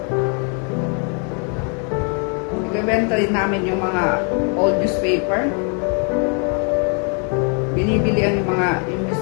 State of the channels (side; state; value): right; quieter; 39.2 dB